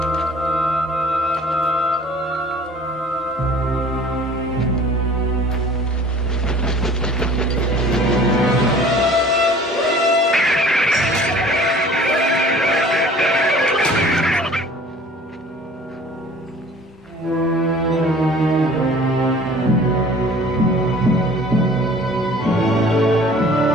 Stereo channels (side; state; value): both; normal; correlation 0.49